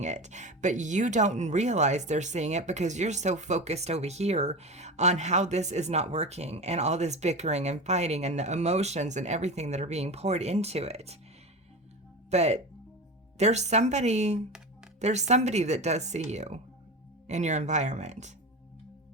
it, but you don't realize they're seeing it because you're so focused over here on how this is not working and all this bickering and fighting and the emotions and everything that are being poured into it. But there's somebody that does see you in your environment.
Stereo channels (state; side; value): normal; both; correlation 0.26